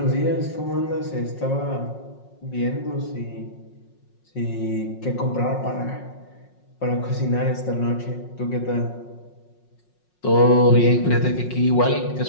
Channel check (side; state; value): right; late; 5.5 ms